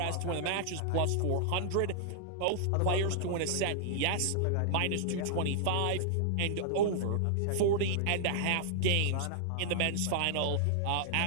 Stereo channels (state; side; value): different; both; correlation -0.01